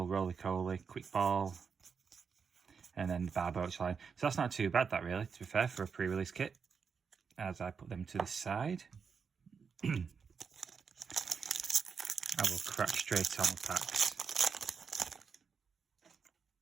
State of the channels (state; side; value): quieter; left; 6.0 dB